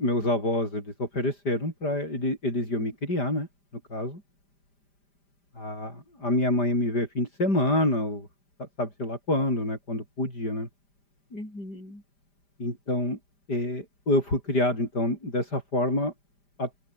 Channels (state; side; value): late; right; 5.0 ms